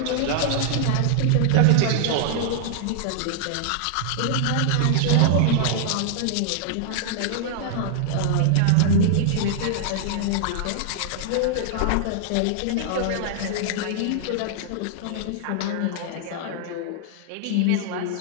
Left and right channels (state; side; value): different; both; correlation -0.01